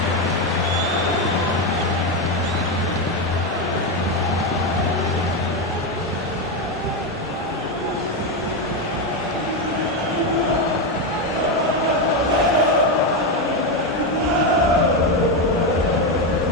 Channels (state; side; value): normal; both; correlation 0.09